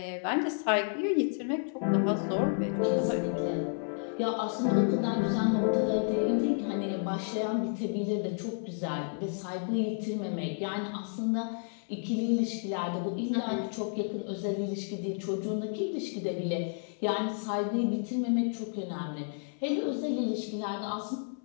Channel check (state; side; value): silent; right; 57 dB below the other